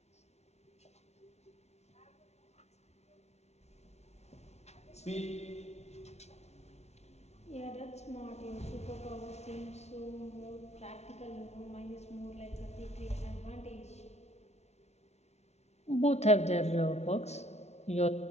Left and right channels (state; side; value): late; right; 0.31 ms